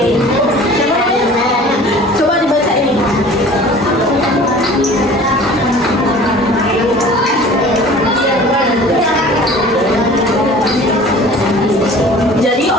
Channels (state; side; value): normal; both; correlation 0.45